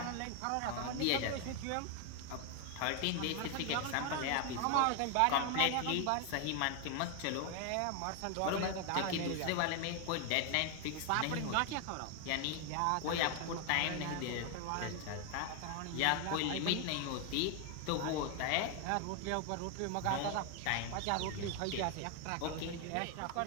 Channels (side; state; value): both; different; correlation 0.01